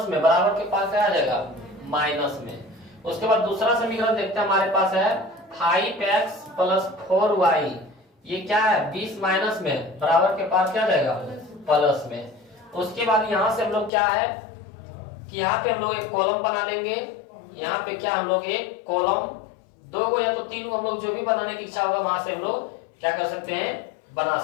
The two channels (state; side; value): drops out; right; at 13.9 s